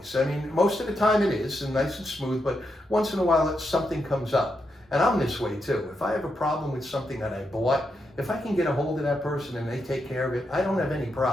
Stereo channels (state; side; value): normal; both; correlation 0.83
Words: I mean, most of the time it is, and nice and smooth, but once in a while something comes up. And I'm this way too. If I have a problem with something that I bought, if I can get a hold of that person and they take care of it, I don't have any